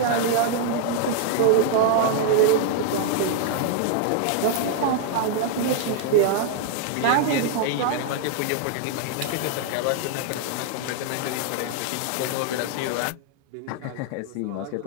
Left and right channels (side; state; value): both; different; correlation 0.00